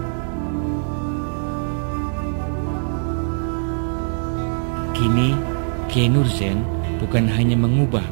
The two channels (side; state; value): left; silent; 64 dB below the other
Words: Kini, Kiai Nur Zain bukan hanya mengubah